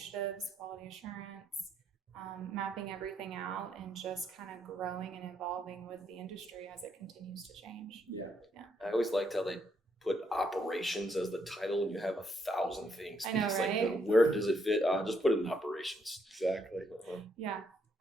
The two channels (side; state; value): both; normal; correlation 0.74